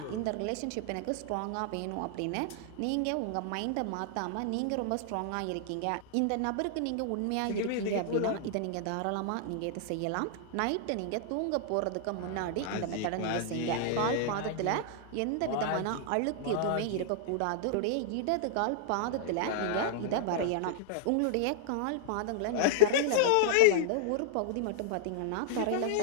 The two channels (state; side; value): different; both; correlation -0.01